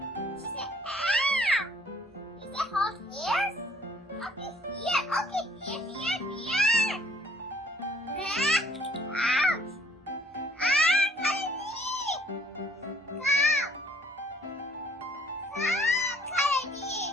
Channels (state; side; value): normal; both; correlation 0.61